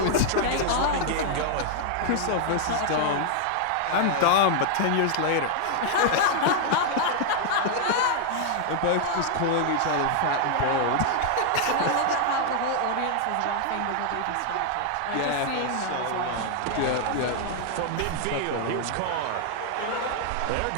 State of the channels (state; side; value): different; both; correlation 0.00